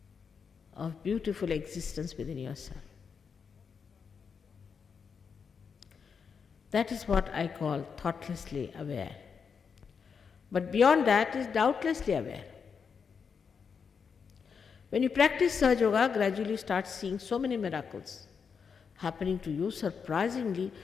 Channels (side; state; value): right; quieter; 6.1 dB